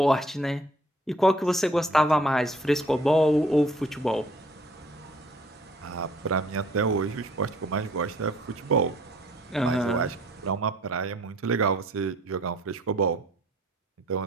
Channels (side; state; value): both; normal; correlation 0.57